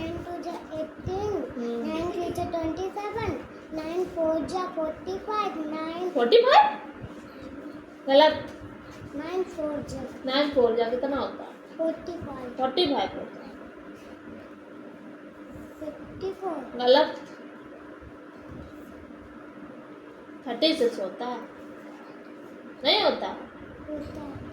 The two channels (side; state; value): both; identical; correlation 1.00